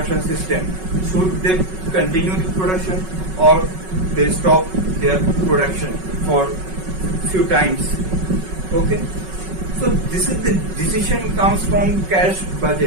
system. Should they continue the production or they stop their production for few times? Okay. So this is the decision comes from cash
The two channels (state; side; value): late; left; 5.4 ms